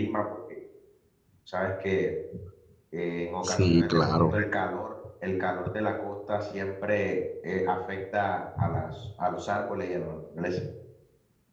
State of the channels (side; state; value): both; identical; correlation 1.00